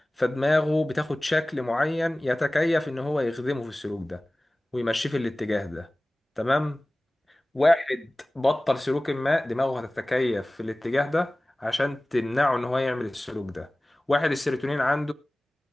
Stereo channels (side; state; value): both; normal; correlation 0.98